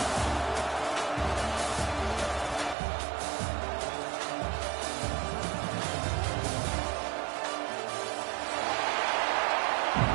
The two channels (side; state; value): left; drops out; at 2.8 s